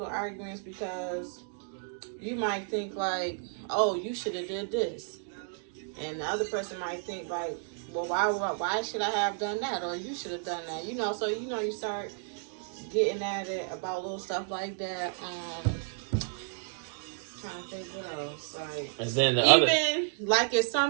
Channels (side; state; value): left; silent; digital silence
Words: arguments because you might think like, oh, you should have did this. And the other person might think like, well, why should I have done that? Or you should have done that. You know, so you know you start getting at it about little stuff like that. Trying to think what else. Like, and then even like it's